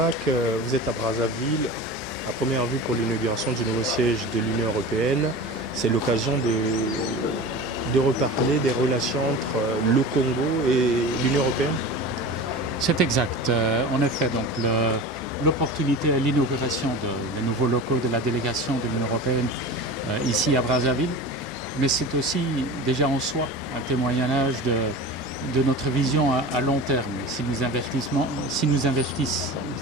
vous êtes à Brazzaville, à première vue pour l'inauguration du nouveau siège de l'Union européenne. C'est l'occasion de reparler des relations entre le Congo et l'Union européenne. C'est exact. En effet, donc l'opportunité à l'inauguration des nouveaux locaux de la délégation de l'Union européenne ici à Brazzaville, mais c'est aussi déjà en soi un témoignage de notre vision à long terme. Si nous investissons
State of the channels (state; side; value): normal; both; correlation 0.32